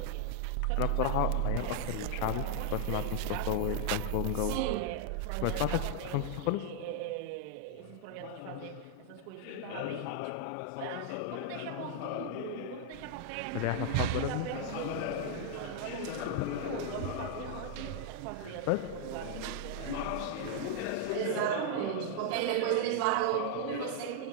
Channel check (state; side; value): different; both; correlation 0.00